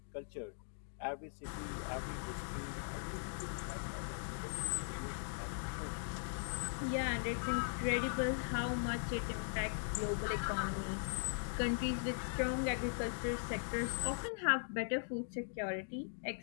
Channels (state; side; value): silent; right; digital silence